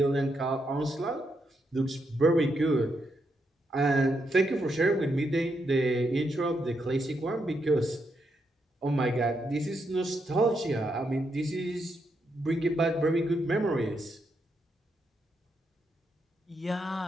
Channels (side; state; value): both; normal; correlation 0.80